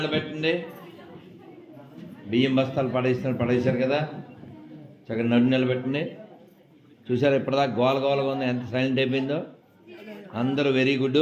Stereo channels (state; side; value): identical; both; correlation 1.00